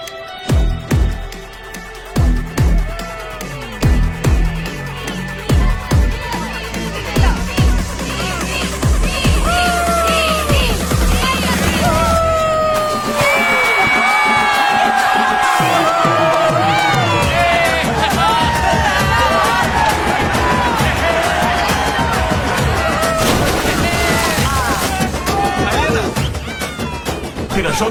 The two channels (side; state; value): both; identical; correlation 1.00